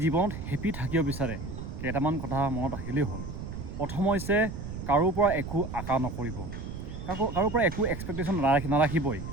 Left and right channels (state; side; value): noise; right; rumble, 8 dB below the sound